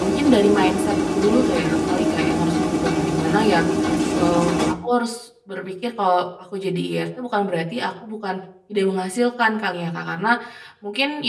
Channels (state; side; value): identical; both; correlation 1.00